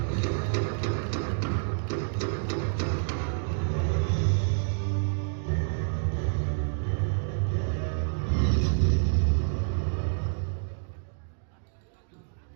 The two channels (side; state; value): left; silent; digital silence